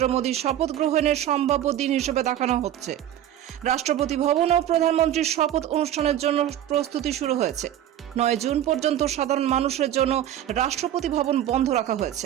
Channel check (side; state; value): left; quieter; 11.5 dB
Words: মোদীর শপথ গ্রহণের সম্ভাব্য দিন হিসেবে দেখানো হচ্ছে। রাষ্ট্রপতি ভবন ও প্রধানমন্ত্রীর শপথ অনুষ্ঠানের জন্য প্রস্তুতি শুরু হয়েছে। 9 জুন পর্যন্ত সাধারণ মানুষের জন্য রাষ্ট্রপতি ভবন বন্ধ রাখা হয়েছে।